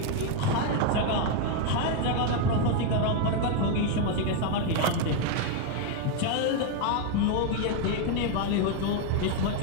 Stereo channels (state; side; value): different; both; correlation 0.01